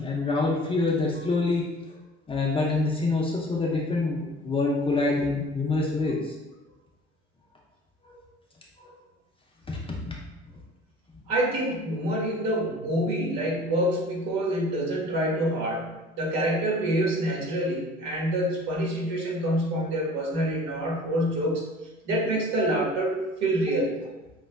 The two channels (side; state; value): both; normal; correlation 0.46